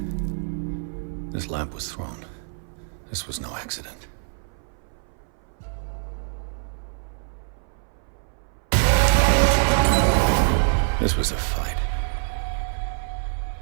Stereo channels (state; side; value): silent; left; 59 dB below the other